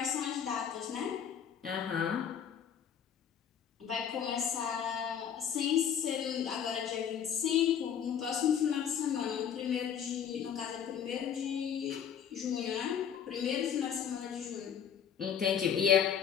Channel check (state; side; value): quieter; right; 8.3 dB